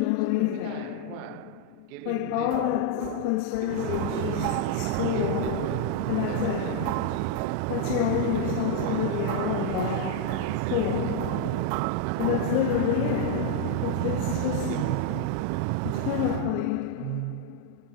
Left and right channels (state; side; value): different; both; correlation 0.00